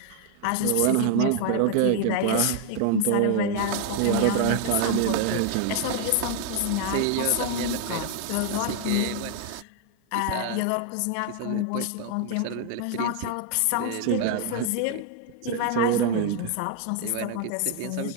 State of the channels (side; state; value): both; different; correlation 0.00